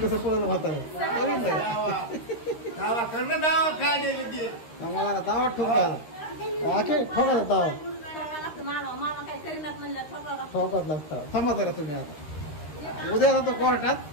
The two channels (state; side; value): late; right; 13 ms